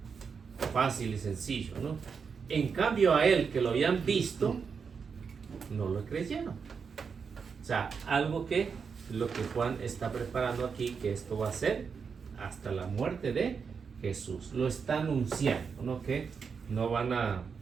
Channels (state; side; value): quieter; left; 5.9 dB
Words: Fácil y sencillo, ¿no? En cambio a él, que lo habían visto, no lo creyeron. O sea, algo que lo que Juan está preparando aquí, que esto va a ser hasta la muerte de Jesús. Lo está anunciando, ¿no? Que no van a,